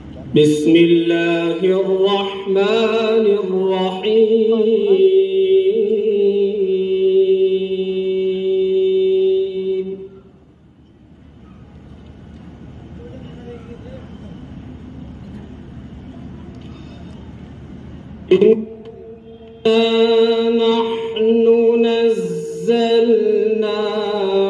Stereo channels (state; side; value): identical; both; correlation 1.00